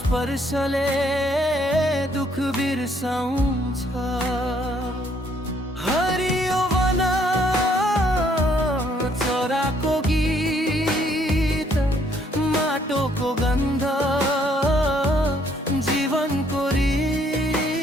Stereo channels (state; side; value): normal; both; correlation 0.67